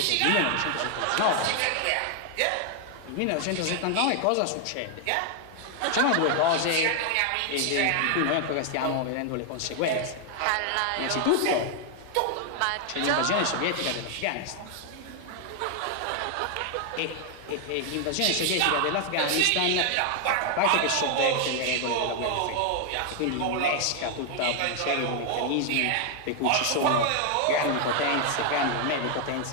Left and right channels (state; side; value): different; both; correlation 0.00